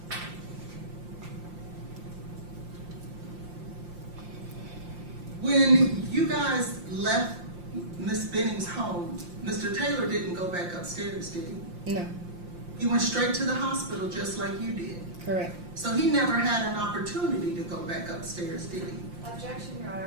when you guys left Miss Benning's home, Mr. Taylor didn't go back upstairs, did he? No. He went straight to the hospital just like you did. Correct. So he never had an opportunity to go back upstairs, did he? Objection, Your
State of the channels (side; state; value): left; late; 5.7 ms